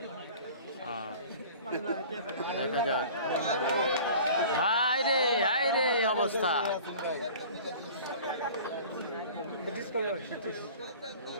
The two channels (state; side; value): inverted; both; correlation -0.43